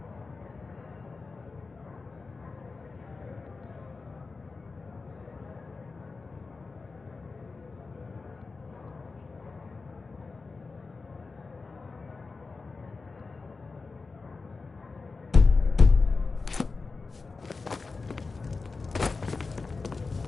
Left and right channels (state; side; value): quieter; right; 4.1 dB